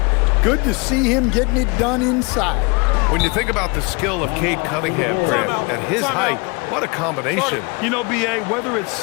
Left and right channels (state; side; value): quieter; right; 29.5 dB